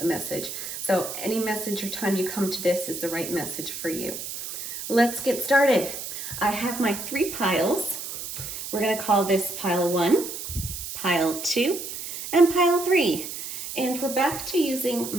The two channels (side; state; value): right; noise; hiss, 8 dB below the sound